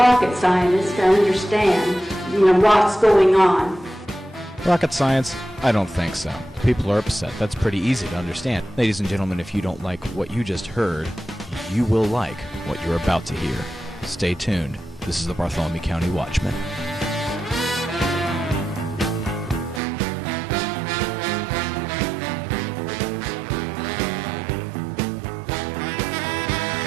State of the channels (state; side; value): drops out; left; at 19.8 s